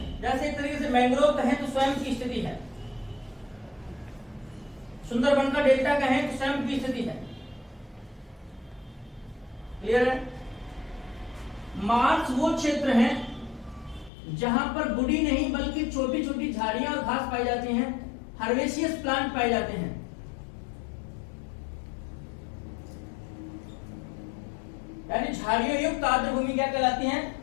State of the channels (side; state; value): right; drops out; at 14.1 s